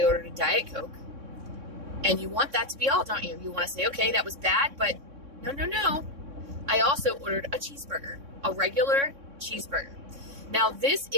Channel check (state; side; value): late; left; 3.6 ms